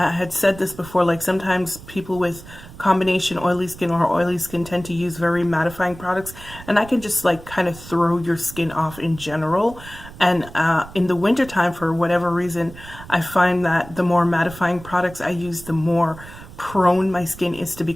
said this before, like sometimes people with combination oily skin or oily skin tend to use very mattifying products, and I can just like kind of throw your skin off in general. And in the wintertime, for whatever reason, I find that the more mattifying products I use, the more prone my skin is to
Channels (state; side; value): noise; right; rumble, 17 dB below the sound